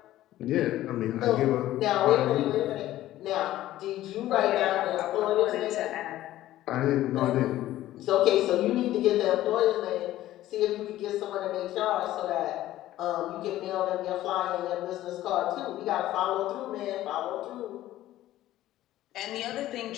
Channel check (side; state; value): right; quieter; 14.4 dB